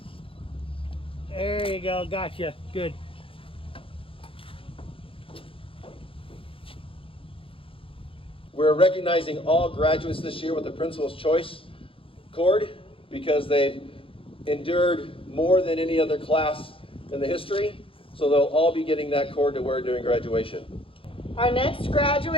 There you go. Gotcha. Good. We're recognizing all graduates this year with the Principal's Choice cord because they've endured more than any other class in the history. So they'll all be getting that cord to wear during graduation. Our next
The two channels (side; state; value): right; late; 0.26 ms